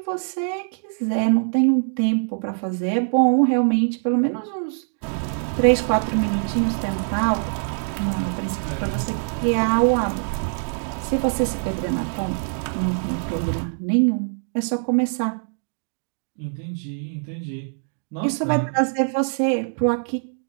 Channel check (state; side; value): silent; left; digital silence